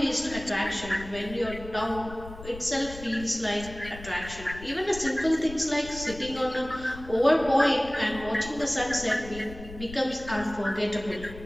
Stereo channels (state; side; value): noise; left; rumble, 14 dB below the sound